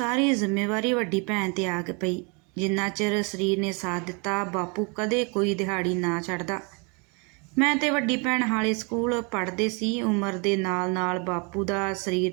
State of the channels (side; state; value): left; quieter; 32.8 dB